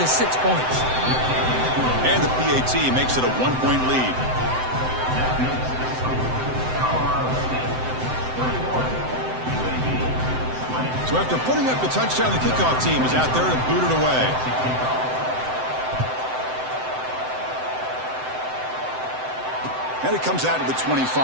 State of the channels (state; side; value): late; left; 7.8 ms